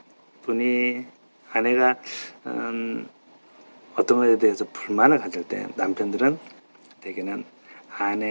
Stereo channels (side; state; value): both; inverted; correlation -1.00